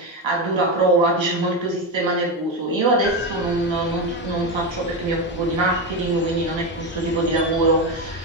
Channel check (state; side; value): normal; both; correlation 0.13